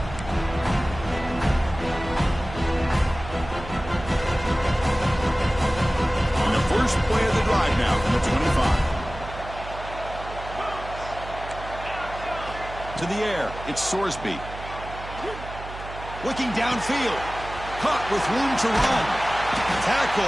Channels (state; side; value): noise; right; hum, 12 dB below the sound